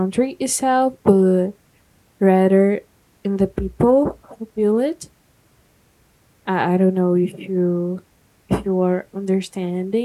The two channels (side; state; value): both; identical; correlation 1.00